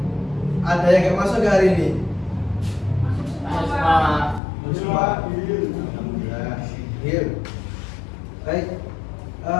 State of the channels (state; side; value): drops out; right; at 4.4 s